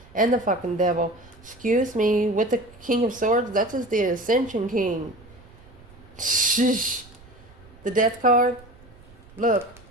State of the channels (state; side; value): noise; right; rumble, 24 dB below the sound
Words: And the fucking devil. Excuse me. With the King of Swords, that's just the Ascension King. Shh. The Death card. Look.